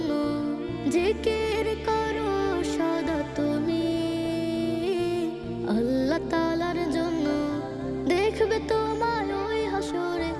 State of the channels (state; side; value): identical; both; correlation 1.00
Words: জিকির করো সদা তুমি আল্লাহ তাআলার জন্য, দেখবে তোমায় ওই হাসরে